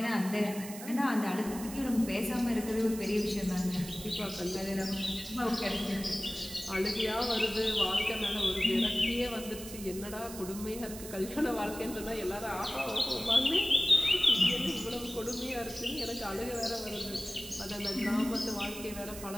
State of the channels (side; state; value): right; noise; hiss, 12 dB below the sound